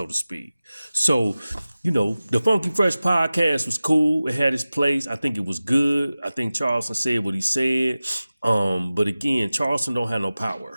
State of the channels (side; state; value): both; inverted; correlation -0.96